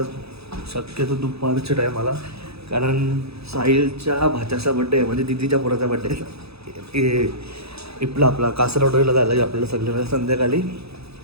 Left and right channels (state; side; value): late; left; 0.78 ms